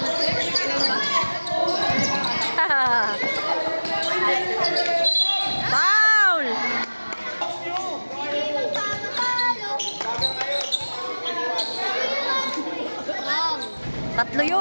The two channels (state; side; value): inverted; both; correlation -1.00